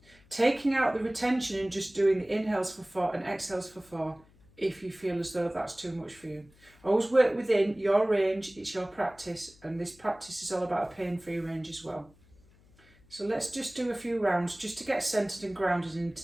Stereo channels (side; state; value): left; noise; hum, 28 dB below the sound